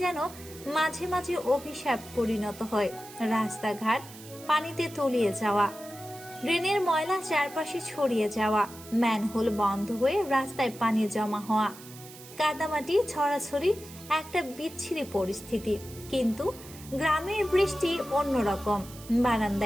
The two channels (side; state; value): right; noise; hiss, 17 dB below the sound